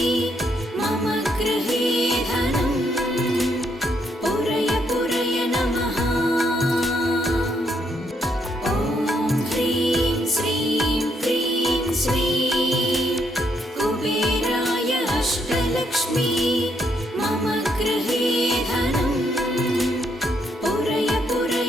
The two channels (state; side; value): normal; both; correlation 0.74